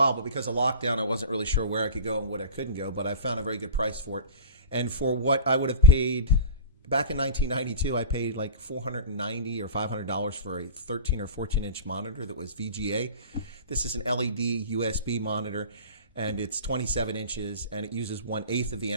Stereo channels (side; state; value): both; inverted; correlation -0.33